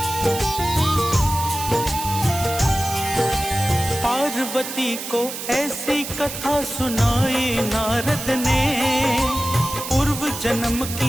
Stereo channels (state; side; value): noise; right; hiss, 8 dB below the sound